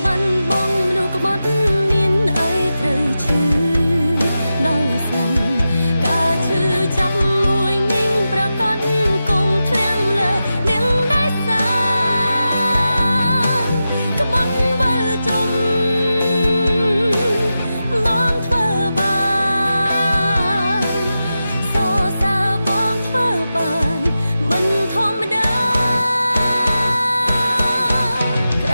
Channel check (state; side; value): inverted; both; correlation -0.91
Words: បានបងមនុស្សក្បត់មានអីត្រូវឈឺដល់ស្លាប់ការឈឺចាប់មួយនាងប្រកាសគង់ធ្លាំលើនាងដែលសាក្បត់វិលជុំបងធ្វើ